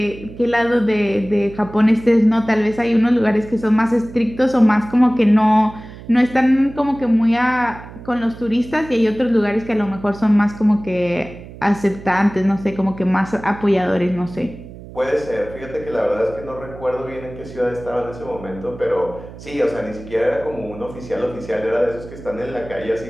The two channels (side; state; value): right; noise; hum, 16 dB below the sound